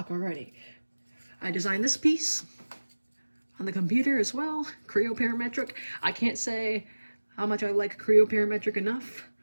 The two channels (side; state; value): both; inverted; correlation -1.00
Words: already. I designed this piece on the computer as well, Creo Parametric. I can't say how much I like Creo Parametric enough.